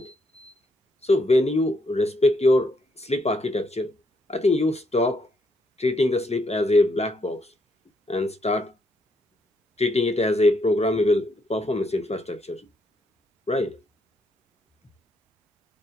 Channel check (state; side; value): normal; both; correlation 0.75